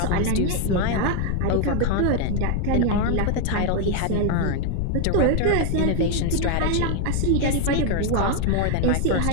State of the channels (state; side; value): different; both; correlation 0.01